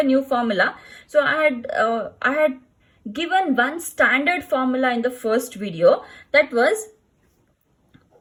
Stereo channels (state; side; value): identical; both; correlation 1.00